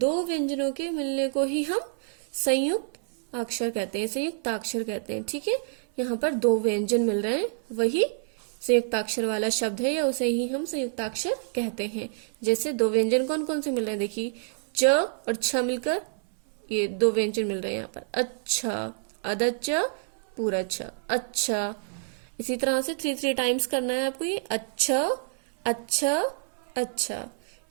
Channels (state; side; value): silent; left; 58 dB below the other